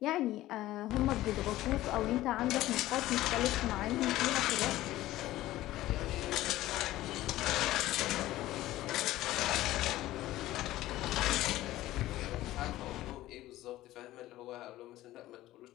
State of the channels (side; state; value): right; quieter; 15.7 dB